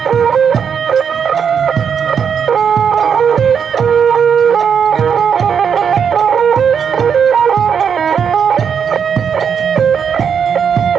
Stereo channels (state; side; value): quieter; left; 7.2 dB